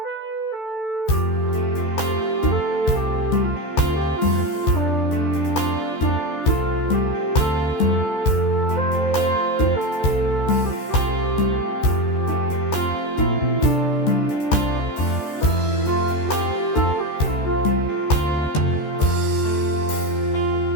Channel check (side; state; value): right; late; 14 ms